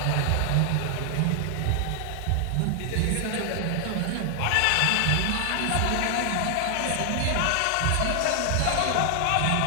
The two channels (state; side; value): different; both; correlation 0.00